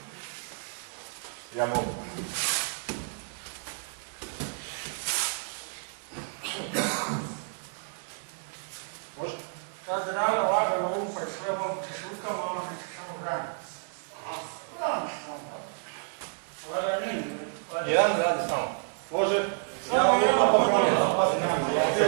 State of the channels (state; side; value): silent; left; digital silence